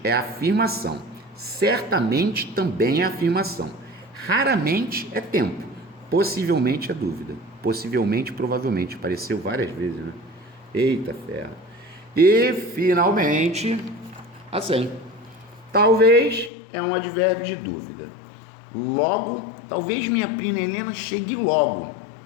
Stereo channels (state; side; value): drops out; right; at 16.5 s